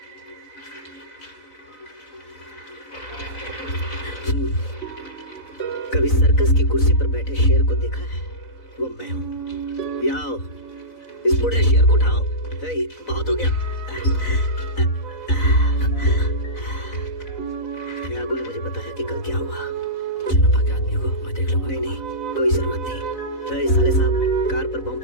कभी सर्कस की कुर्सी पर बैठे शेर को देखा है? वो मैं हूँ। आओ, इस बूढ़े शेर को उठाओ। हे, बहुत हो गया। त्यागू ने मुझे बताया कि कल क्या हुआ। जनपा के आदमियों को मैं देख लूंगा। नहीं नहीं, कोई जरूरत नहीं। हे, साले साहब, कार पर बम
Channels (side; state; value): right; late; 4.0 ms